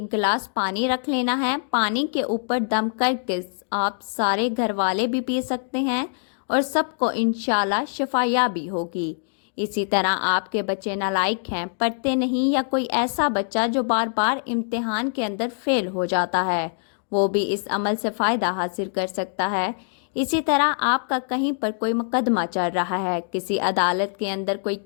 गिलास पानी रख लेना है। पानी के ऊपर दम करके आप सारे घर वाले भी पी सकते हैं और सबको इंशाल्लाह शिफायाबी होगी। इसी तरह आपके बच्चे नालायक हैं, पढ़ते नहीं, या कोई ऐसा बच्चा जो बार बार इम्तिहान के अंदर फेल हो जाता है, वो भी इस अमल से फ़ायदा हासिल कर सकता है। इसी तरह आपका कहीं पर कोई मुकदमा चल रहा है, किसी अदालत के अंदर कोई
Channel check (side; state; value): right; silent; digital silence